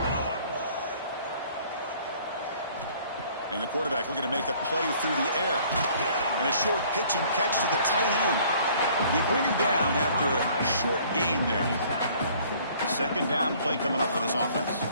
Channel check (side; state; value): both; inverted; correlation -0.56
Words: And the quarterback looking to make a play through the air. And a short pitch and catch to the tight end. They bring him down after a short gain there. Second down play coming up for this offense.